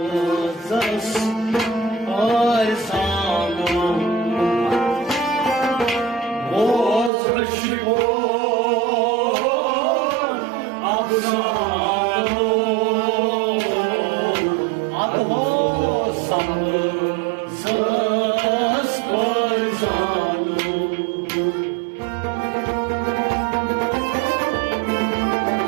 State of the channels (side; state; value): left; drops out; at 7.1 s